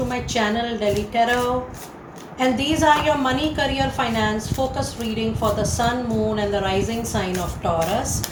my channel Delhi Tarot, and these are your money, career, finance focus reading for the sun, moon and the rising sign of Taurus.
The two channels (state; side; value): identical; both; correlation 1.00